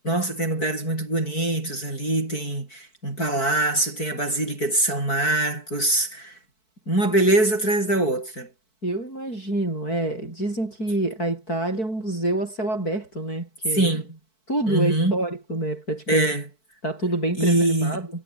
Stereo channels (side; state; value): right; late; 4.6 ms